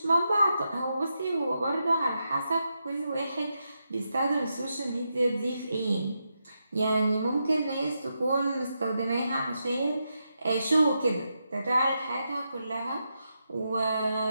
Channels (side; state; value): both; inverted; correlation -0.85